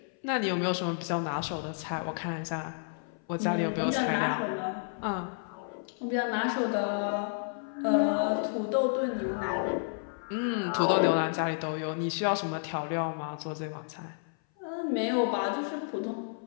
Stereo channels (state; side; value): silent; right; 57 dB below the other